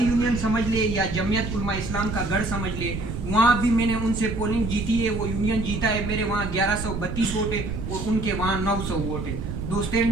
سمجھ لے یا جمعیت علماء اسلام کا گڑھ سمجھ لے، وہاں بھی میں نے ان سے پولنگ جیتی ہے، وہ یونین جیتا ہے۔ میرے وہاں 1132 ووٹ ہے اور ان کے وہاں 900 ووٹ ہے۔ دوستین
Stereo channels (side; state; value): right; noise; rumble, 5 dB below the sound